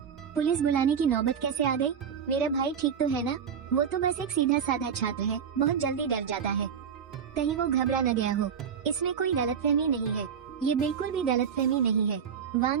पुलिस बुलाने की नौबत कैसे आ गई? मेरा भाई ठीक तो है ना? वो तो बस एक सीधा साधा छात्र है, बहुत जल्दी डर जाता है। कहीं वो घबरा न गया हो। इसमें कोई गलतफहमी नहीं है, ये बिल्कुल भी गलतफहमी नहीं है।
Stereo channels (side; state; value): left; quieter; 7.4 dB